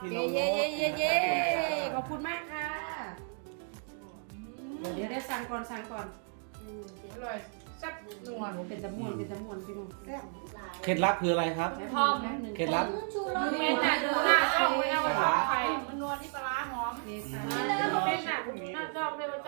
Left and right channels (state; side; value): silent; left; 56 dB below the other